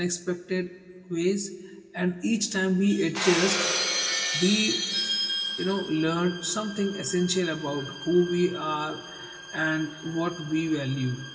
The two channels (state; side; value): identical; both; correlation 1.00